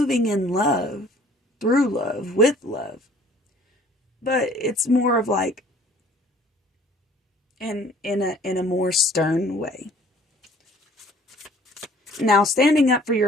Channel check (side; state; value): both; normal; correlation 0.54